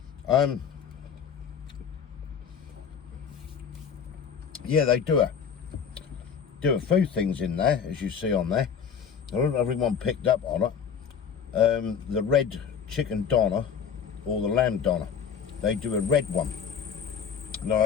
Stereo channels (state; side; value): quieter; right; 7.1 dB